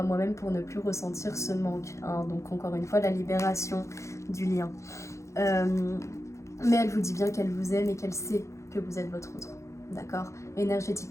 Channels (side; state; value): right; late; 0.14 ms